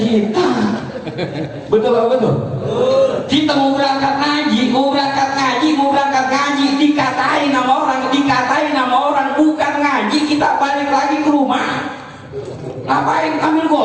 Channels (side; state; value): both; identical; correlation 1.00